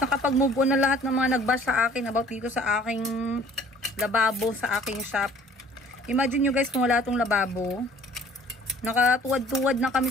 on na lahat ng mga nag-bash sa akin about dito sa aking lababo sa aking shop. Imagine nyo guys kung wala itong lababo. Nakatuwad-tuwad na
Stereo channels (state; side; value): normal; both; correlation 0.54